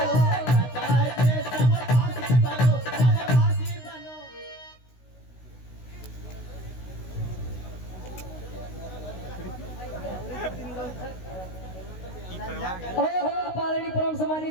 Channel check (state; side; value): late; right; 16 ms